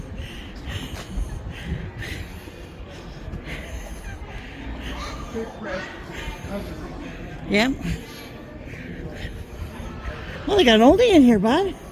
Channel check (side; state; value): both; identical; correlation 1.00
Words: Yep. Well, they got an oldie in here, bud.